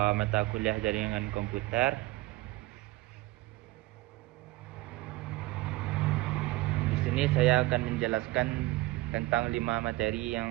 kuliah jaringan komputer. Di sini saya akan menjelaskan tentang 5 materi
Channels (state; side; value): quieter; left; 19.4 dB